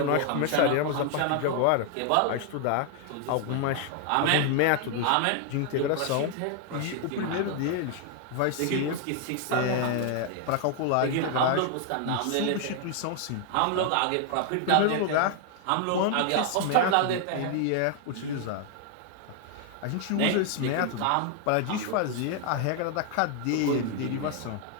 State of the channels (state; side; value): different; both; correlation 0.00